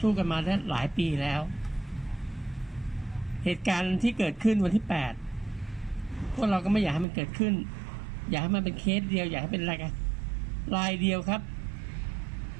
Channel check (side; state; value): left; drops out; at 7.1 s